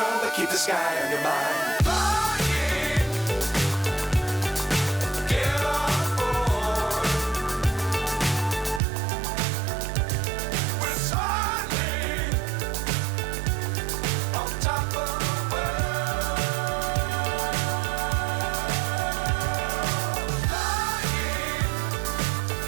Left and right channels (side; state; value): left; drops out; at 8.8 s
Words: but keep the sky on your mind.